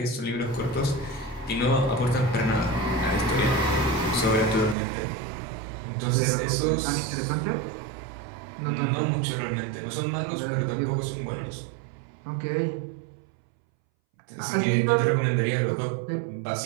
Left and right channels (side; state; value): left; drops out; at 4.8 s